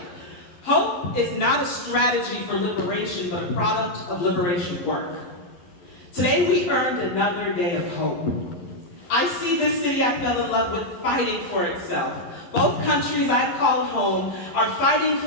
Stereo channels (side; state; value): right; late; 11 ms